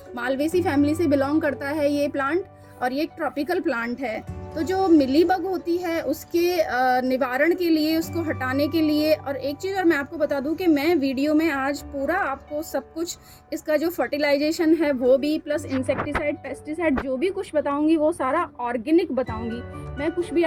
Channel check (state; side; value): identical; both; correlation 1.00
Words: मालवेसी फैमिली से बिलोंग करता है ये प्लांट, और ये एक ट्रॉपिकल प्लांट है। तो जो मिलीबग होती है उसके निवारण के लिए, उसको हटाने के लिए, और एक चीज़ और मैं आपको बता दूं कि मैं वीडियो में आज पूरा आपको सब कुछ, इसका जो फर्टिलाइजेशन है वो भी, प्लस इंसेक्टिसाइड, पेस्टिसाइड, जो भी कुछ बताऊंगी वो सारा ऑर्गेनिक बताऊंगी। मैं कुछ भी